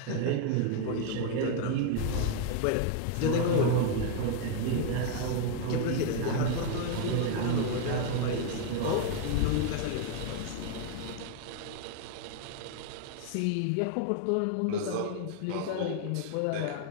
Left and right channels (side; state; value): both; different; correlation 0.00